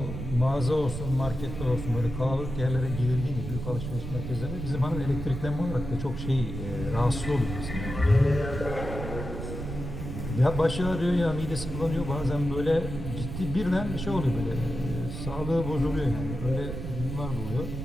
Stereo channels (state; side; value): noise; right; rumble, 6 dB below the sound